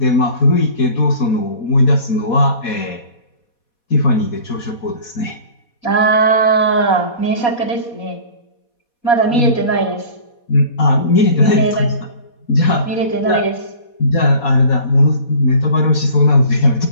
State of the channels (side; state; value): right; late; 4.2 ms